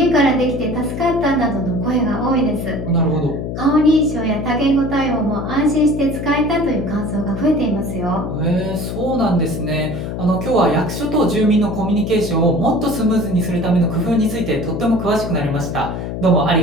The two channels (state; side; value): noise; left; hum, 5 dB below the sound